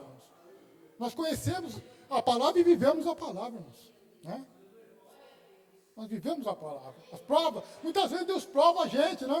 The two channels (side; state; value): both; identical; correlation 1.00